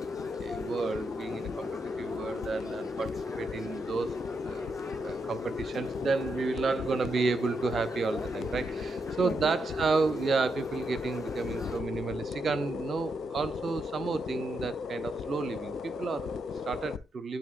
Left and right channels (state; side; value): normal; both; correlation 0.82